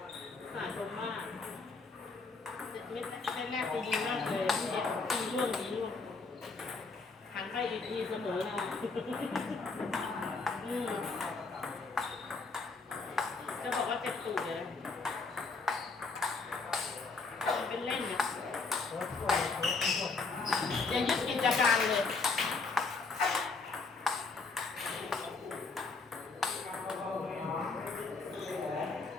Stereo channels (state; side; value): quieter; right; 4.1 dB